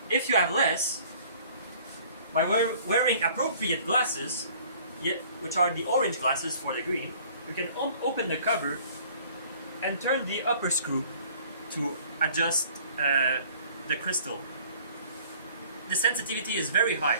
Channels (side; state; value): both; inverted; correlation -0.53